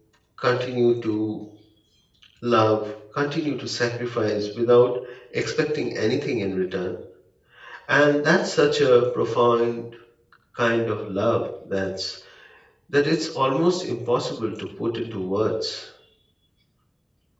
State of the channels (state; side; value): identical; both; correlation 1.00